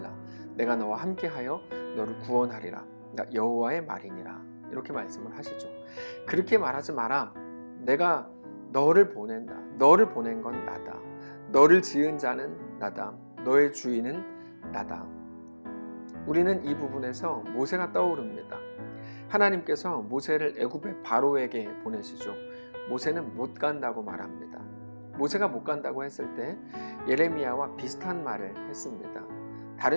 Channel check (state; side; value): inverted; both; correlation -1.00